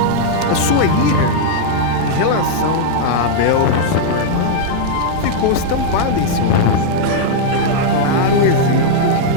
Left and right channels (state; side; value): different; both; correlation -0.01